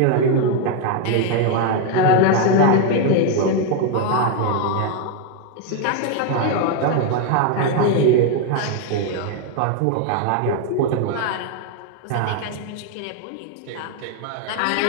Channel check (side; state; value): both; different; correlation 0.01